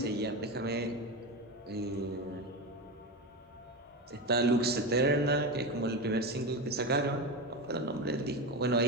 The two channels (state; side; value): normal; both; correlation 0.18